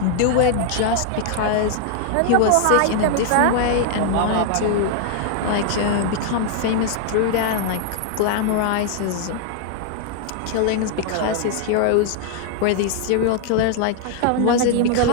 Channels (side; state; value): both; different; correlation 0.00